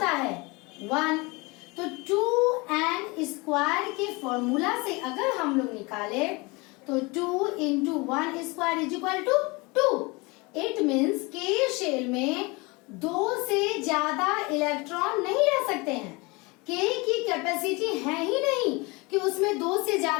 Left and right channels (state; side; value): quieter; right; 26.0 dB